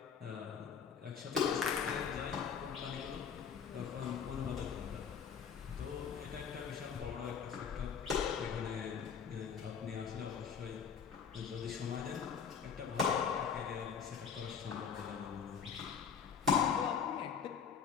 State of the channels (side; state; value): right; quieter; 6.8 dB